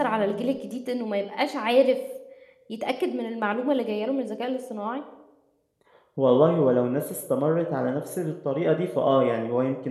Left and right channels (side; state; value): both; identical; correlation 1.00